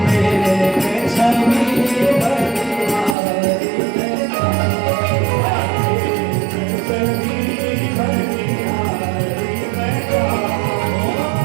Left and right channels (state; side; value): drops out; left; at 3.2 s